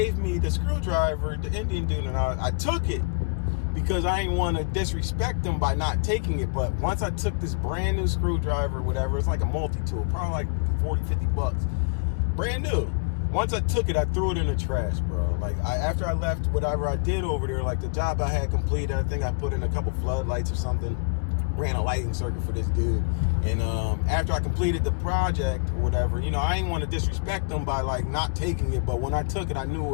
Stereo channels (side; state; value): right; quieter; 34.2 dB